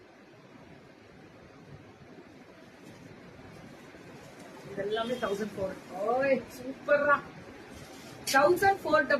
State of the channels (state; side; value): identical; both; correlation 1.00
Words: இதெல்லாமே 1400. சூப்பரா